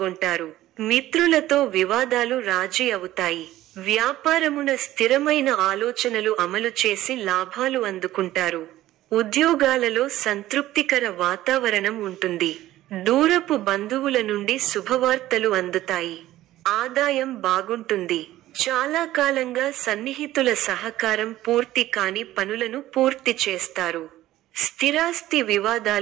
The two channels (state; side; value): quieter; left; 14.9 dB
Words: మిత్రులతో వివాదాలు రాజీ అవుతాయి. వ్యాపారమున స్థిరమైన ఆలోచనలు అమలు చేసి లాభాలు అందుకుంటారు. ఉద్యోగాలలో సంతృప్తికర వాతావరణం ఉంటుంది. దూరపు బంధువుల నుండి శుభవార్తలు అందుతాయి. ఆదాయం బాగుంటుంది. చాలా కాలంగా సన్నిహితుల సహకారం పూర్తి కాని పనులను పూర్తి చేస్తారు. స్థిరాస్తి